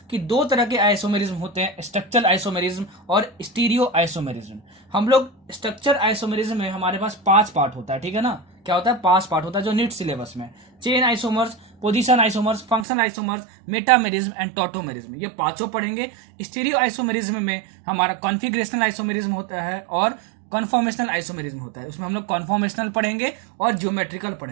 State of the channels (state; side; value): drops out; left; at 12.9 s